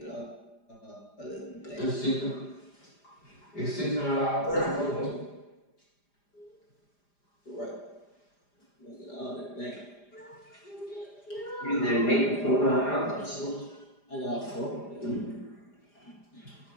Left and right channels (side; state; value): right; late; 4.9 ms